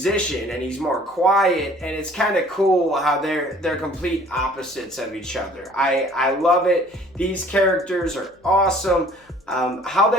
and he's more quiet, and it's kind of cool how they're complete opposites of each other. I love it. These characters are awesome. How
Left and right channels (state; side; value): normal; both; correlation 0.53